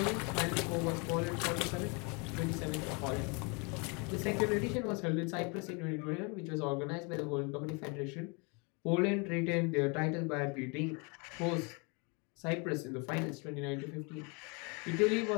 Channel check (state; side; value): quieter; right; 32.1 dB